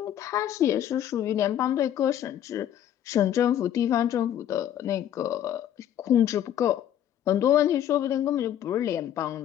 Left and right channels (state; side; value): quieter; right; 10.7 dB